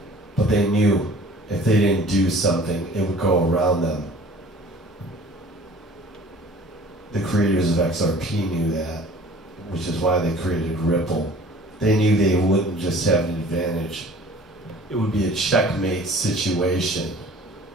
but they knew if they didn't do something, it would go around them. The creators of XRP knew that, which is why they created Ripple. They knew they wouldn't just have an advantage. It would be a checkmate situation.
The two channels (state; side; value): normal; both; correlation 0.48